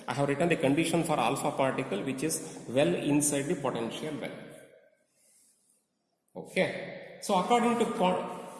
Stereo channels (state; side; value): identical; both; correlation 1.00